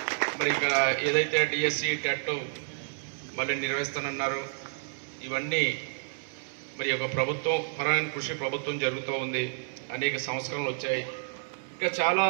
మరి ఇక్కడ ఏదైతే డిఎస్సి టెట్ మళ్ళీ నిర్వహిస్తానన్నారు, ఇవన్నీ మరి ఒక ప్రభుత్వం పరమైన కృషి ప్రభుత్వం జరుగుతూ ఉంది. అనేక సంస్కరణలు వచ్చాయి. ఇంకా చాలా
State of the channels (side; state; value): left; silent; 58 dB below the other